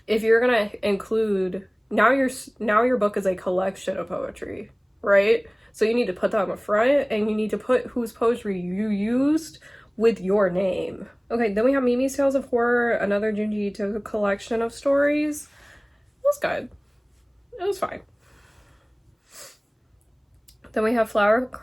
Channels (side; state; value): both; identical; correlation 1.00